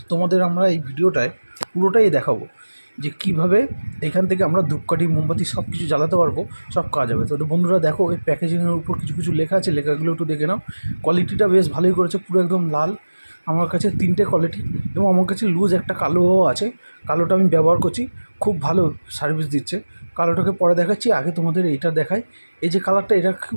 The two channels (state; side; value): inverted; both; correlation -1.00